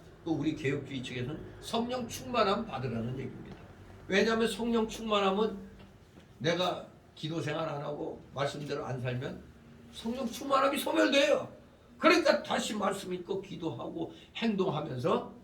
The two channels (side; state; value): both; identical; correlation 1.00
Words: 또 우리 개혁주의 측에서는 성령 충만함 받으라는 얘기입니다. 왜냐하면 성령 충만함은 내가 기도 생활 안 하고 말씀대로 안 살면 성령 충만함이 소멸돼요. 그러니까 다시 말씀 읽고 기도하고 행동하면서